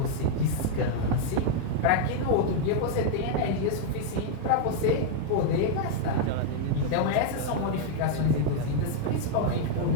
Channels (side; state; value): both; different; correlation -0.01